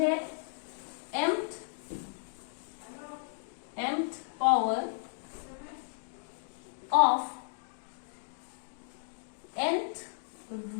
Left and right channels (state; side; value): silent; right; digital silence